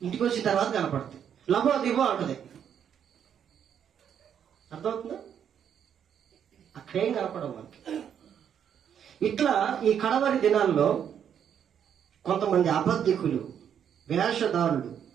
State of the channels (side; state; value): left; quieter; 8.7 dB